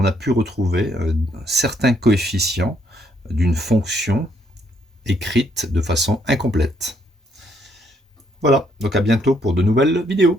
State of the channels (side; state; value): both; normal; correlation 0.71